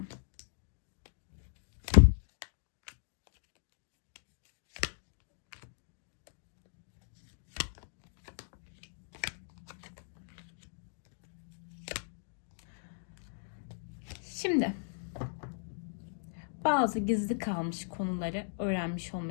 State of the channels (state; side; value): silent; right; digital silence